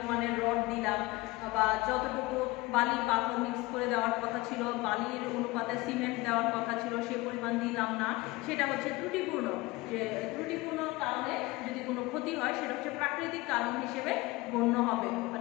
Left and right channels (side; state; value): right; quieter; 21.3 dB